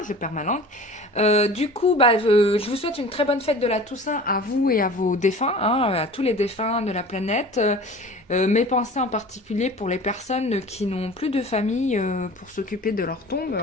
perds ma langue. Du coup, je vous souhaite une très bonne fête de la Toussaint à vous et à vos défunts, hein, à tous les défunts de la planète. Mes pensées en particulier pour les personnes qui n'ont plus de famille pour s'occuper de leur tombe.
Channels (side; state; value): both; normal; correlation 0.41